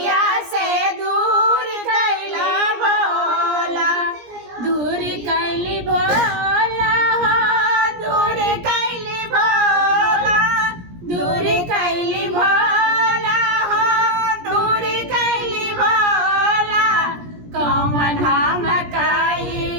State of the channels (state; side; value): late; left; 17 ms